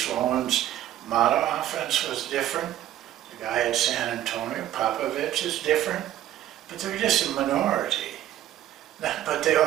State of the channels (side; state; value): left; quieter; 12.6 dB